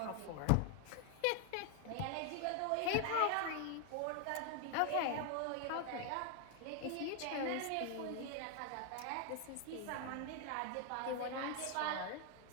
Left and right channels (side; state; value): both; different; correlation 0.00